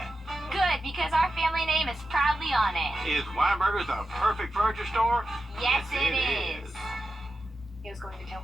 Good, because our family name is proudly on it. Is Weinberger's the perfect furniture store? Yes, it is. He was going to tell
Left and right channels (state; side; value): normal; both; correlation 0.91